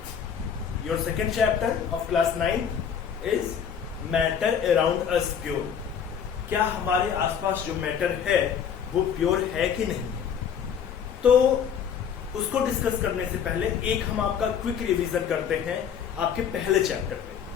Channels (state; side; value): quieter; right; 7.7 dB